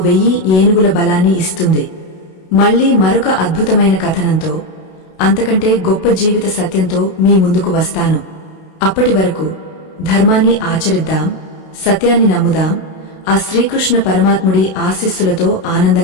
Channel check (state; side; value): late; right; 32 ms